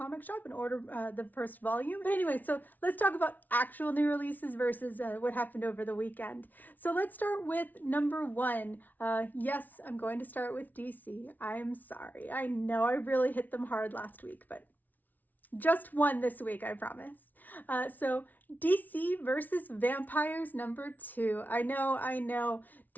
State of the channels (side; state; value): right; late; 0.080 ms